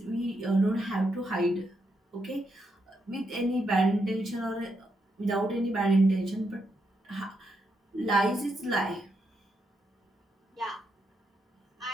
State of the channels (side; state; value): both; normal; correlation 0.81